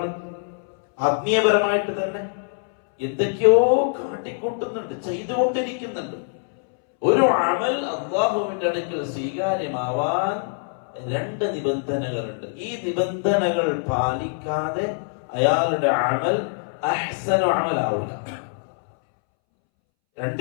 ആത്മീയപരമായിട്ട് തന്നെ എന്തൊക്കെയോ കാട്ടിക്കൂട്ടുന്നുണ്ട്, ചെയ്തുകൊണ്ടിരിക്കുന്നുണ്ട്. ഒരു അമൽ അല്ലാഹുവിന്റെ അടുക്കൽ സ്വീകാര്യമാവാൻ 2 നിബന്ധനകളുണ്ട്. ഈ നിബന്ധനകൾ പാലിക്കാതെ അയാളുടെ അമൽ അഹ്സനു അമലാവില്ല.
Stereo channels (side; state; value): right; silent; 63 dB below the other